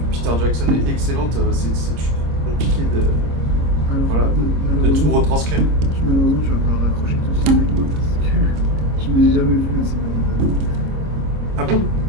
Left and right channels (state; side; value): late; left; 26 ms